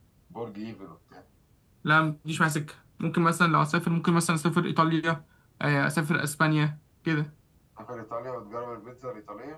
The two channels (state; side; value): identical; both; correlation 1.00